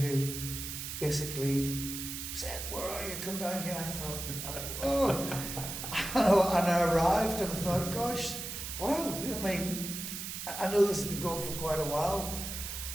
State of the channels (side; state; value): right; noise; hiss, 6 dB below the sound